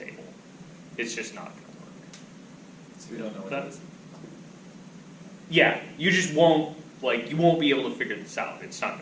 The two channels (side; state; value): both; identical; correlation 1.00